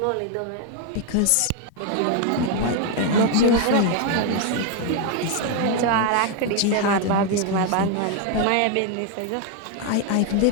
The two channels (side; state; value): both; different; correlation 0.01